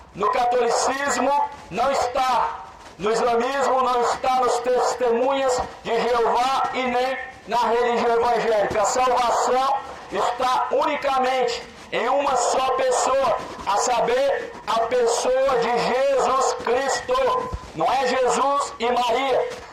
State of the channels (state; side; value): identical; both; correlation 1.00